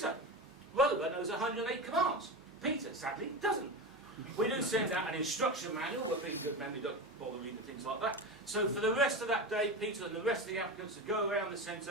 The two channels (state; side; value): normal; both; correlation 0.23